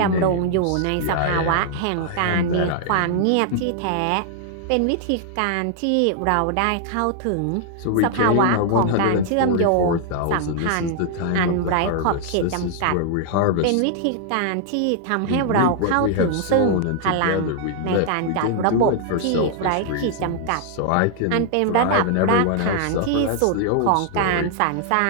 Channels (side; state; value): both; different; correlation 0.00